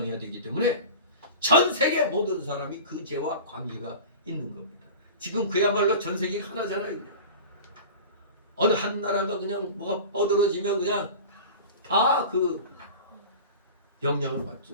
되기 때문에 전 세계 모든 사람이 그 죄와 관계가 있는 겁니다. 지금 그야말로 전 세계가 하나잖아요. 그냥. 어느 한 나라가 그냥 뭐가 뻗어지면 그냥 다 그 영향을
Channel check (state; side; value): inverted; both; correlation -0.35